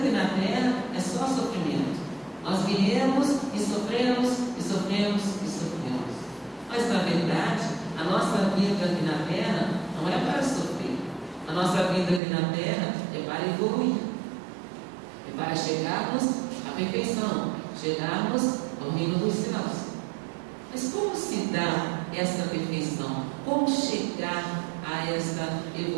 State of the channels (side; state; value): left; drops out; at 12.2 s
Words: na terra é só sofrimento. Nós viemos e sofremos, e sofremos, e sofremos. Mas na verdade, a nossa vida aqui na terra não é para sofrer. A nossa vida aqui na terra é para evoluir. É para chegarmos à perfeição, chegarmos ao reino dos céus. Mas como se dá essa perfeição? Como chegar a essa